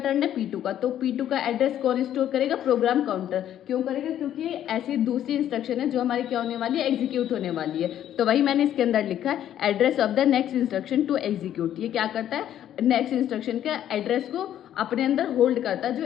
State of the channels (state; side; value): quieter; right; 11.1 dB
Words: है, P2 का, तो P2 का एड्रेस कौन स्टोर करेगा, प्रोग्राम काउंटर। क्यों करेगा, क्योंकि ऐसी दूसरी इंस्ट्रक्शन है जो हमारी क्या होने वाली है, एग्जीक्यूट होने वाली है। तो वही मैंने इसके अंदर लिखा है, address of the next instruction to execute. ये क्या करता है, नेक्स्ट इंस्ट्रक्शन के एड्रेस को अपने अंदर होल्ड करता है जो